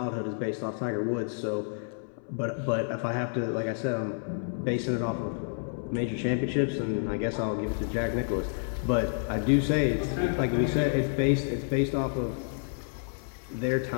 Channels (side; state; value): right; silent; 58 dB below the other